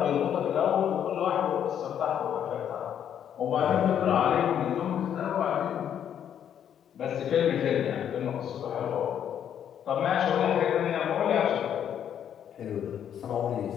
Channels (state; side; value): quieter; right; 9.3 dB